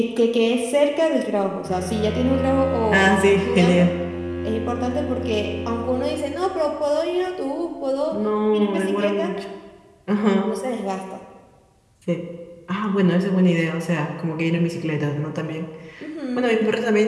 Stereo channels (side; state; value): both; identical; correlation 1.00